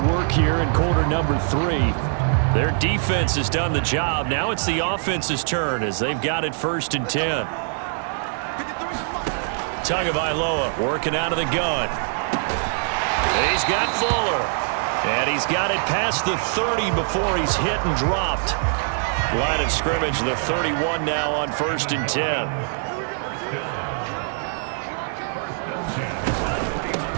here in quarter number 3. Their defense has done the job. Now it's the offense's turn as they've got it 1st and 10. Tagovailoa working out of the gun. He's got Fuller. And he's got it past the 30 before he's hit and dropped. Line of scrimmage, the 31 now on 1st and 10.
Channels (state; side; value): silent; left; 63 dB below the other